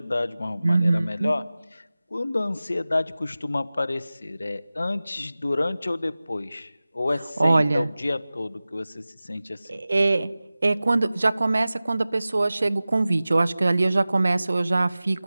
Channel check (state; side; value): inverted; both; correlation -0.97